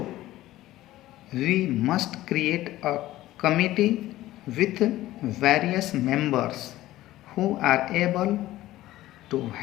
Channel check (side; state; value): right; quieter; 15.6 dB